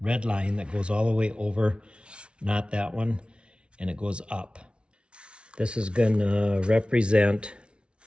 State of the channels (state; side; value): late; left; 0.058 ms